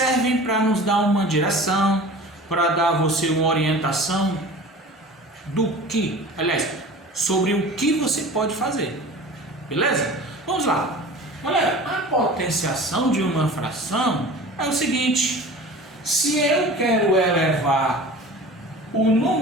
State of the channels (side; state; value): both; normal; correlation 0.40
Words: para nos dar uma direção, para dar a você uma orientação sobre o que você pode fazer. Beleza? Vamos lá. Olha, a potenciação de uma fração é o seguinte: se eu quero elevar o